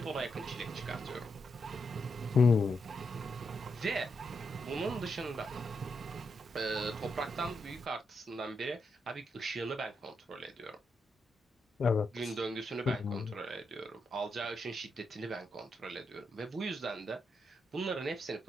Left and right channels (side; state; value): both; normal; correlation 0.83